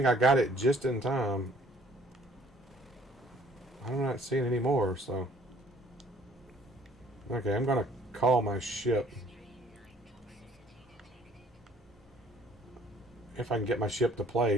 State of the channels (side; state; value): both; normal; correlation 0.59